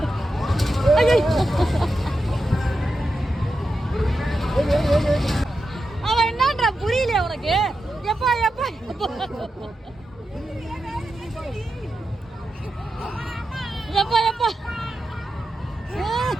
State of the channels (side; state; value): both; normal; correlation 0.89